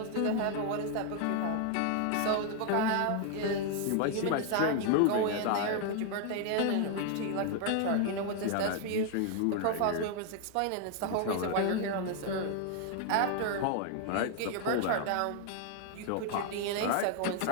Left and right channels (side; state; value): both; different; correlation 0.00